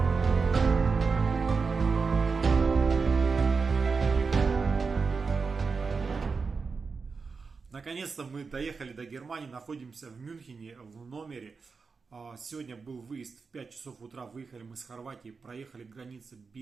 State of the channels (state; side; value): quieter; left; 4.8 dB